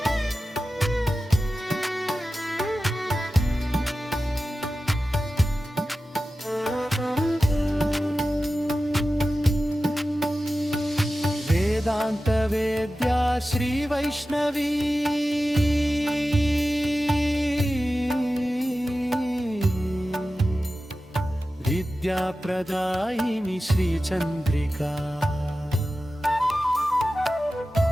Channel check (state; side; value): normal; both; correlation 0.94